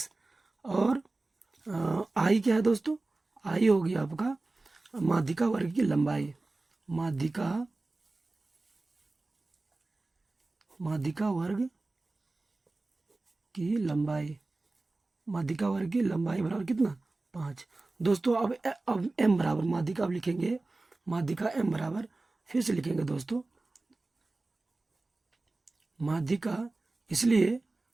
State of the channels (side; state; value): left; quieter; 3.2 dB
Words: और आई क्या है दोस्तों, आई हो गया आपका माध्यिका वर्ग की लंबाई, माध्यिका वर्ग की लंबाई, माध्यिका वर्ग की लंबाई बराबर कितना, 5 दोस्तों। अब एम बराबर माध्यिका, अब लिखेंगे माध्यिका एम बराबर, फिर से लिखेंगे दोस्तों माध्यिका, इसलिए